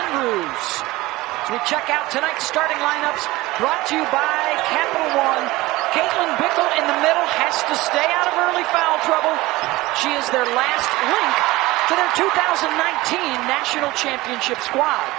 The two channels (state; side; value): quieter; left; 19.6 dB